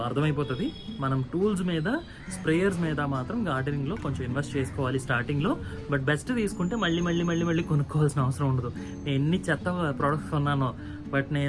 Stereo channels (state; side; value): identical; both; correlation 1.00